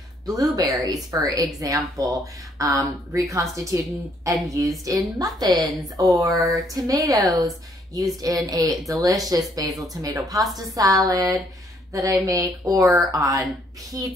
blueberries, for example, reconstituted and used in muffins, or tomatoes, used in a delicious basil tomato pasta salad that I make, or on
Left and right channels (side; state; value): both; normal; correlation 0.67